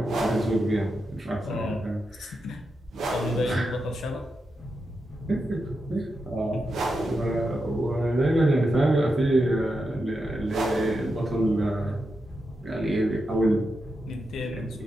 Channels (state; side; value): normal; both; correlation 0.87